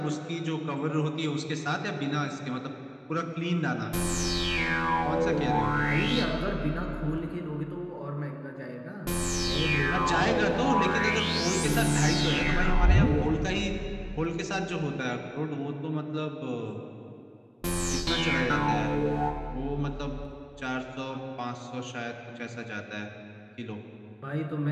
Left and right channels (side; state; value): both; identical; correlation 1.00